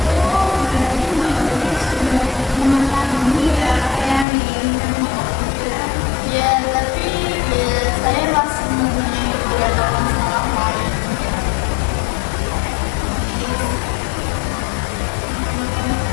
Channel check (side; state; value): right; drops out; at 4.2 s